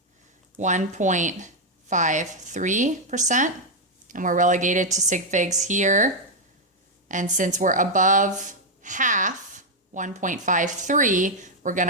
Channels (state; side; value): normal; both; correlation 0.01